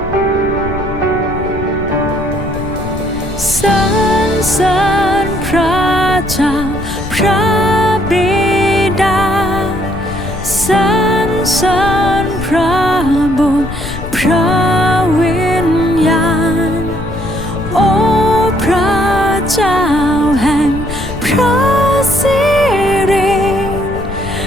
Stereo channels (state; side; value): noise; left; rumble, 9 dB below the sound